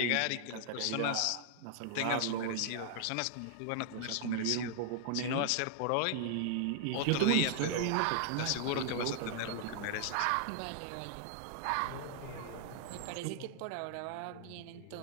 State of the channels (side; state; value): both; different; correlation -0.01